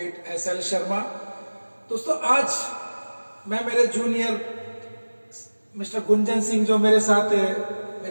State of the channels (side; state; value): both; inverted; correlation -1.00